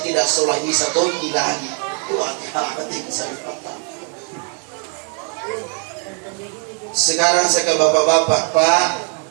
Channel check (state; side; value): quieter; left; 38.7 dB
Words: tidak sholat isya tonti lagi. Sekarang saya ke bapak-bapak,